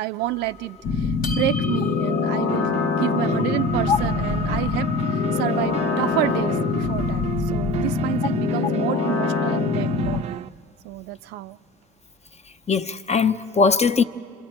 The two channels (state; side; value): normal; both; correlation 0.37